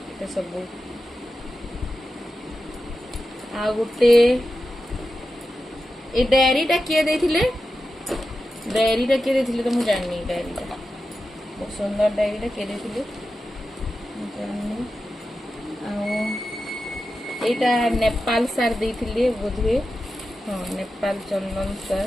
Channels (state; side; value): normal; both; correlation 0.91